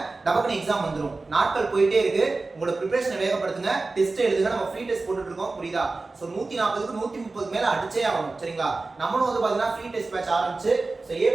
டபக்குனு எக்ஸாம் வந்துரும். நாட்கள் போயிட்டே இருக்கு. உங்களோட பிரிபரேஷனை வேகப்படுத்துங்க. டெஸ்ட் எழுதுங்க. நம்ம ஃப்ரீ டெஸ்ட் போட்டுட்டு இருக்கோம். புரியுதா? சோ 140க்கு 130 மேல அடிச்சே ஆகணும். சரிங்களா? நம்மளும் வந்து பாத்தீங்கன்னா ஃப்ரீ டெஸ்ட் பேட்ச் ஆரம்பிச்சு சோ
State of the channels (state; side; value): quieter; left; 3.5 dB